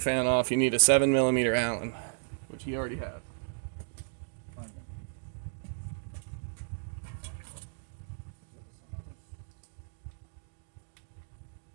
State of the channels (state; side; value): silent; left; digital silence